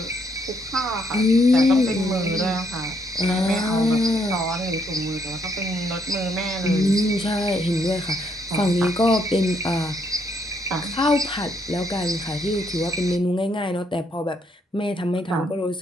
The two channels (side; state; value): both; normal; correlation 0.72